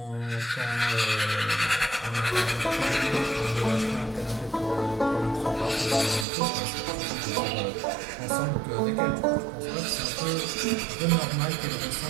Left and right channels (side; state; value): left; drops out; at 6.2 s